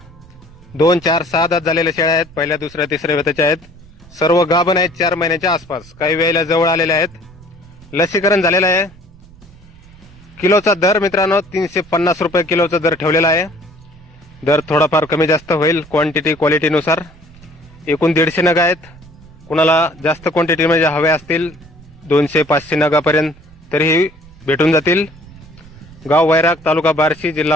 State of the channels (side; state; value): right; noise; rumble, 23 dB below the sound